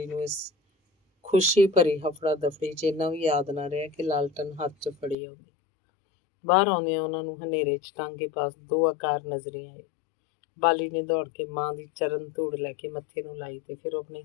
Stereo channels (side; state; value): right; drops out; at 5.2 s